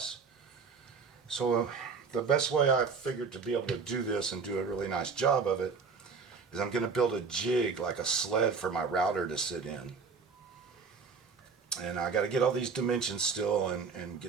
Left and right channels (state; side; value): quieter; left; 5.1 dB